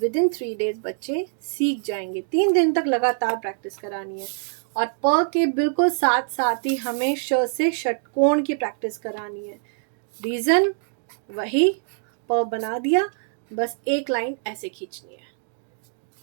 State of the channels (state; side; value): silent; left; digital silence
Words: इन 3 डेज बच्चे सीख जाएंगे। 3 दिन तक लगातार प्रैक्टिस करानी है। और प के बिल्कुल साथ साथ ही हमें श से षटकोण की प्रैक्टिस करानी है। रीजन वही, प बना दिया, बस एक लाइन ऐसे खींचनी है।